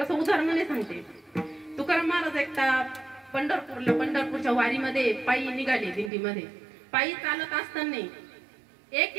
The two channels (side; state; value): left; drops out; at 6.1 s